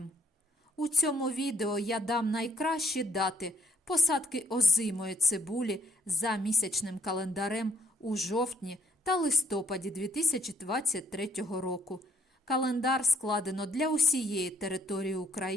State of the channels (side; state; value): both; normal; correlation 0.65